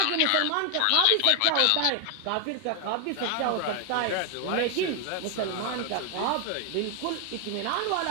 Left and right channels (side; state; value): both; different; correlation 0.00